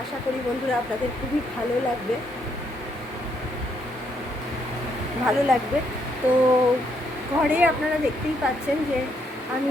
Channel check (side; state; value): both; normal; correlation 0.74